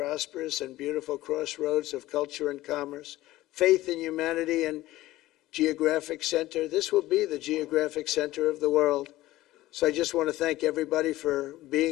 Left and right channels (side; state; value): right; quieter; 16.6 dB